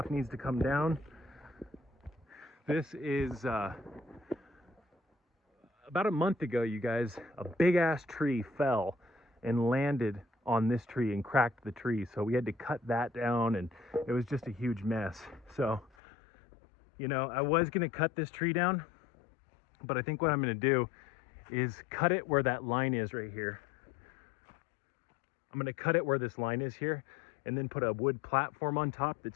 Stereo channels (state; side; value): drops out; right; at 15.9 s